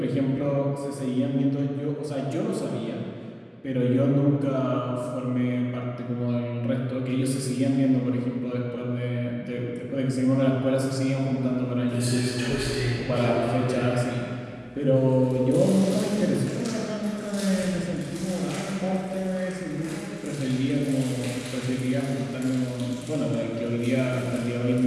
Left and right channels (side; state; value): both; identical; correlation 1.00